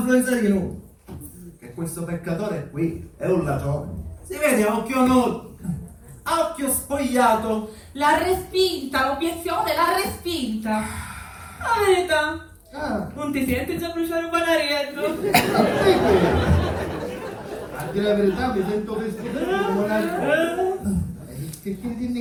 di nuovo. Che questo peccatore qui è un ladrone. Si vede a occhio nudo, a occhio spogliato. L'ha respinta, l'obiezione l'ha respinta. La verità, non ti senti già bruciare un banarietto? A dire la verità mi sento vestito come una... Che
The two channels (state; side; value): identical; both; correlation 1.00